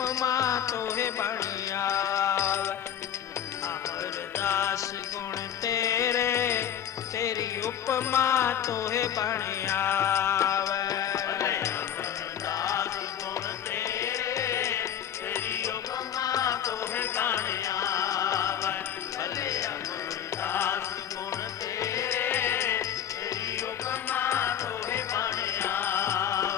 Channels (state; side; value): quieter; right; 9.7 dB